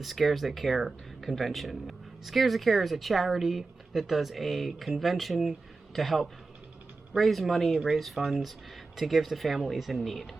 Scares That Care convention. Scares That Care is a charity that does a convention to help raise money, raise funds to give to families in need.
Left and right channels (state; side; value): quieter; left; 3.8 dB